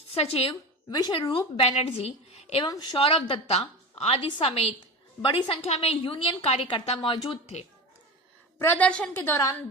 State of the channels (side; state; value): both; normal; correlation 0.27